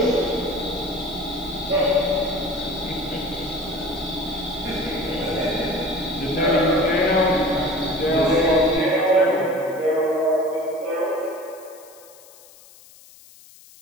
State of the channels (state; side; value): noise; left; hiss, 23 dB below the sound